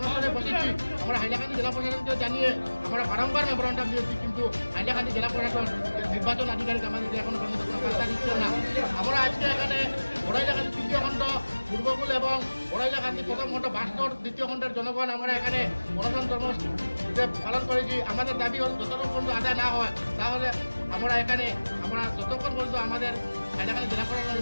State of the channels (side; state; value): both; inverted; correlation -1.00